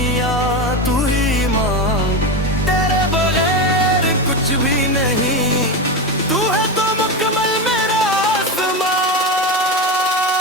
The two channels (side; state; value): both; normal; correlation 0.16